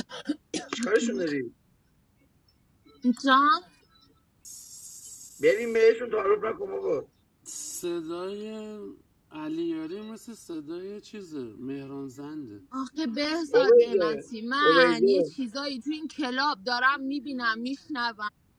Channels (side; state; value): both; identical; correlation 1.00